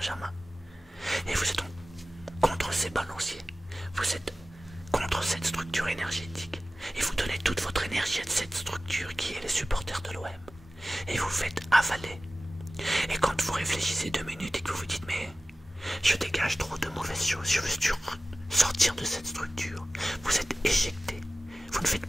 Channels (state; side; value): normal; both; correlation 0.96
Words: Et vous êtes donc contre ces balanciers. Vous êtes contre cette structure énergétique. Et vous donnez toute votre énergie à cette structure qui est les supporters de l'OM. Et vous faites avaler. Et quand vous réfléchissez 2 minutes et que vous vous dites « mais je dégage trop de mauvaises choses, je veux sortir de cette structure », vous êtes éjecté. Vous ne faites